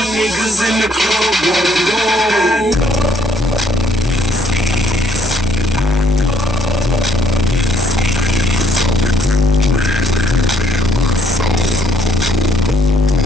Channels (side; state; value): both; normal; correlation 0.67